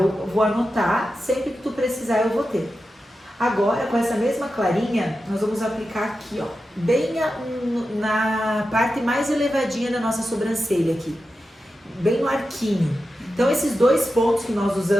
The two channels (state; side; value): normal; both; correlation 0.91